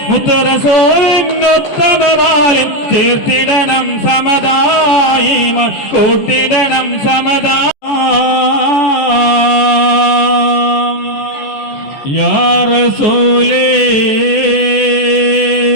മുത്തറസോലിനൊത്തമമാലിൻ ചേർത്തിടണം സമതായിമാൻ കൂട്ടിടണം സമതാ യാ റസൂലേ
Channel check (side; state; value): right; late; 14 ms